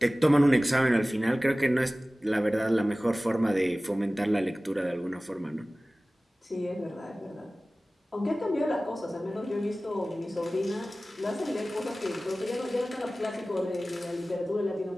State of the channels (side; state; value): both; normal; correlation 0.97